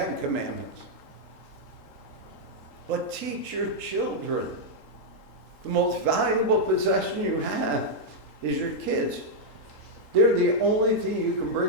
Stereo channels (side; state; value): right; late; 3.8 ms